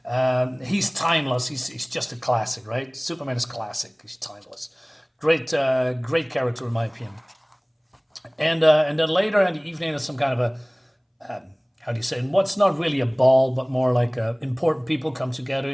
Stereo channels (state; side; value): identical; both; correlation 1.00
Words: He's timeless. He's just a classic, right? Superman is classic. He's timeless. Great character in my opinion. And then later in the evening, there's some kind of a how do you say? What's not really a ball, but more like important people come together.